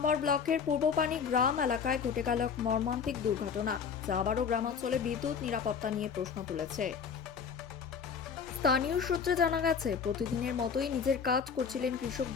ব্লকের পূর্বপানি গ্রাম এলাকায় ঘটে গেল এক মর্মান্তিক দুর্ঘটনা, যা আবারও গ্রামাঞ্চলে বিদ্যুৎ নিরাপত্তা নিয়ে প্রশ্ন তুলেছে। স্থানীয় সূত্রে জানা গেছে, প্রতিদিনের মতোই নিজের কাজ করছিলেন কৃষক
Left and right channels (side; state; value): right; quieter; 6.5 dB